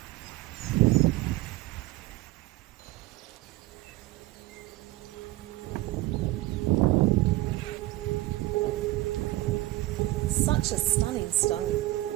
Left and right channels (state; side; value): quieter; left; 17.6 dB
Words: Such a stunning stone.